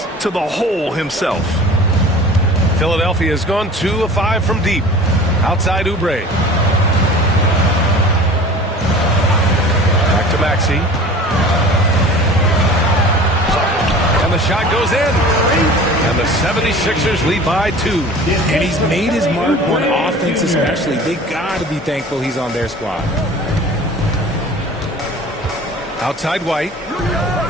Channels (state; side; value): normal; both; correlation 0.41